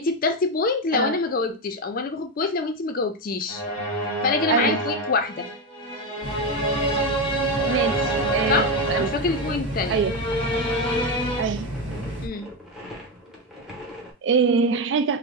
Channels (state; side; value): normal; both; correlation 0.11